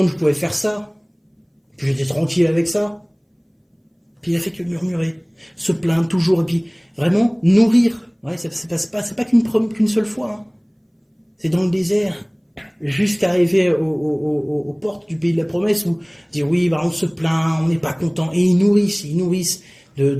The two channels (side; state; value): both; identical; correlation 1.00